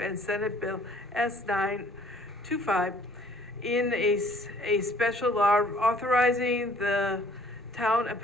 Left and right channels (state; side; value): normal; both; correlation 0.58